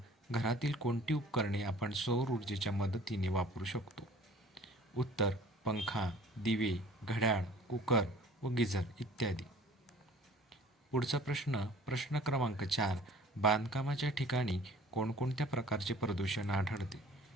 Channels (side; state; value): both; normal; correlation 0.49